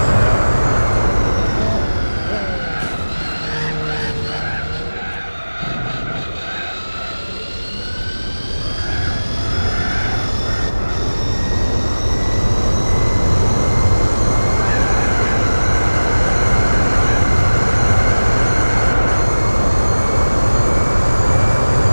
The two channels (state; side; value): inverted; both; correlation -1.00